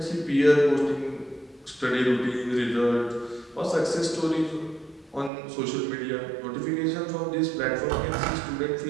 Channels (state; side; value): drops out; left; at 5.3 s